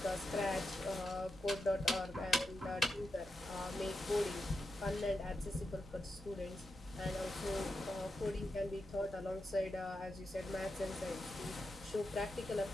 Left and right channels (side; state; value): both; normal; correlation 0.87